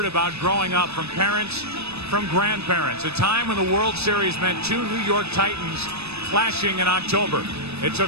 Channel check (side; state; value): left; late; 0.79 ms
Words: about growing up from parents, from grandparents, a time when the World Series meant two New York Titans clashing in October. It